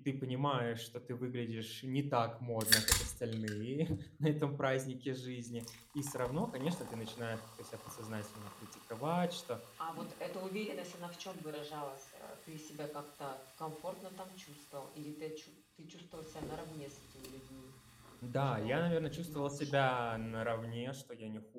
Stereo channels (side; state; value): both; identical; correlation 1.00